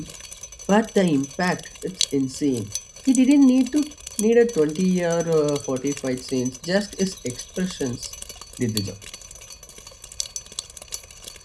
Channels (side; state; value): both; identical; correlation 1.00